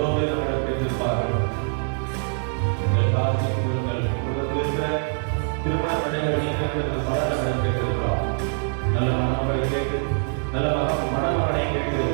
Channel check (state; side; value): silent; left; 57 dB below the other